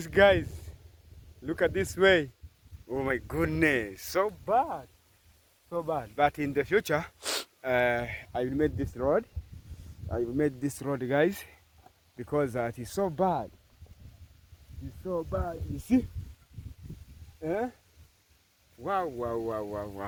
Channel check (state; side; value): identical; both; correlation 1.00